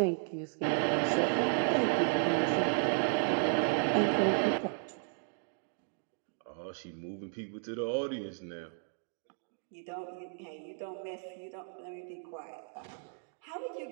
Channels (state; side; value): silent; left; 55 dB below the other